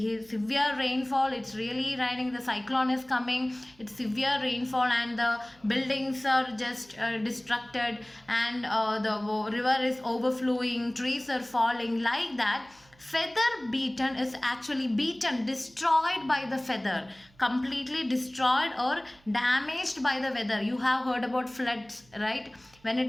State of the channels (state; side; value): noise; right; hum, 29 dB below the sound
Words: rainfall. It's really raining. The cyclone is coming. It's severe rainfall, and the buildings are just destructed, and the river is overflowing. Trees are falling like that. Feather beaten is actually beaten, destroyed by the feather, completely destroyed or damaged by the weather. You have heard about floods, right? When